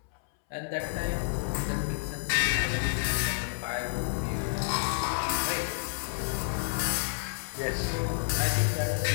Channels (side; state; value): right; silent; 58 dB below the other